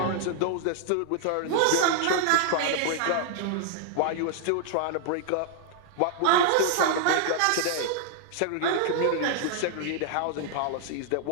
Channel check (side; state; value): both; different; correlation -0.01